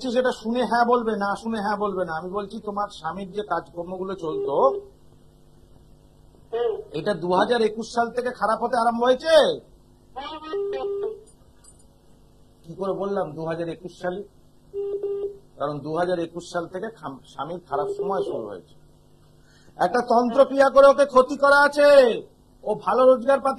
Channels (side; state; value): both; identical; correlation 1.00